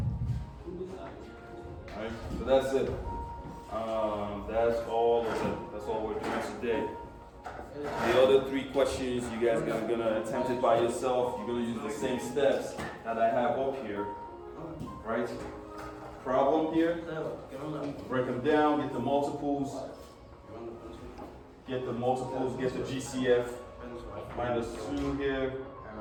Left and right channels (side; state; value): both; identical; correlation 1.00